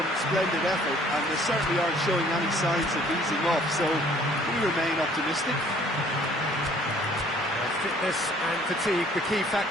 splendid effort, and they certainly aren't showing any signs of easing off, so we remain optimistic. Fitness and fatigue, the key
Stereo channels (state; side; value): normal; both; correlation 0.57